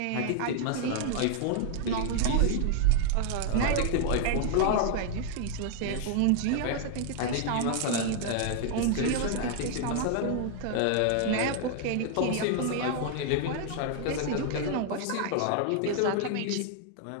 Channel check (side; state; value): both; different; correlation 0.00